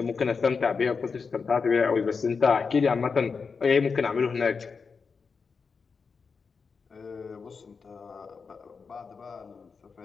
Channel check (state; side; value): quieter; right; 5.2 dB